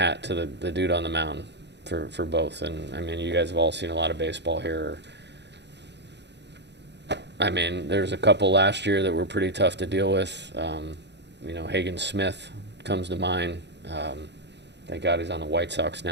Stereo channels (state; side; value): late; left; 0.50 ms